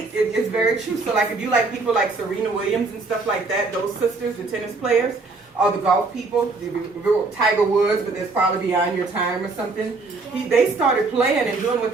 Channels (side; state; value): left; quieter; 3.7 dB